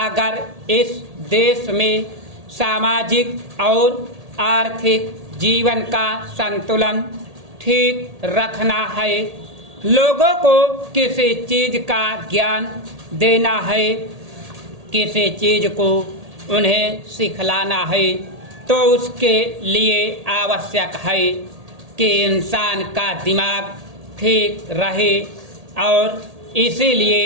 इस देश में सामाजिक और आर्थिक जीवन का संतुलन ठीक रखना है, लोगों को किसी चीज का ज्ञान देना है, किसी चीज को उन्हें सिखलाना है, तो उसके लिए आवश्यक है कि इंसान का दिमाग ठीक रहे। और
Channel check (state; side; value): late; left; 1.8 ms